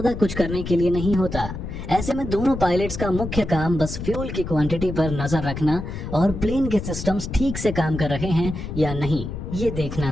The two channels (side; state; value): left; noise; rumble, 7 dB below the sound